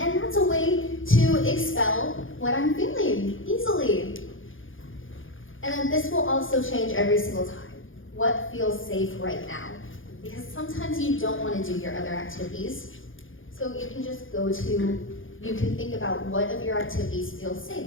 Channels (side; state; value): right; late; 0.58 ms